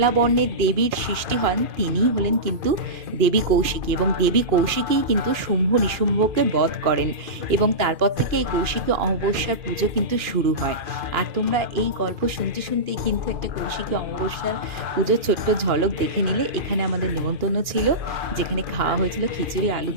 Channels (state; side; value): late; left; 2.4 ms